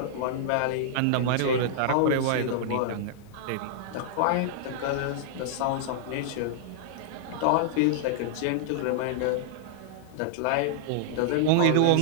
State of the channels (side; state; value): both; different; correlation -0.01